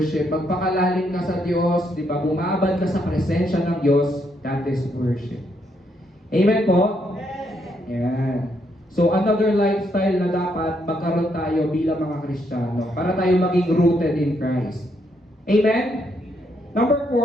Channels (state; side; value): normal; both; correlation 0.76